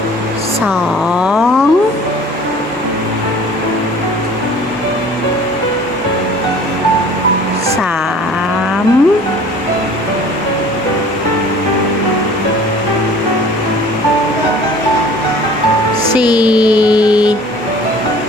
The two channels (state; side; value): normal; both; correlation 0.48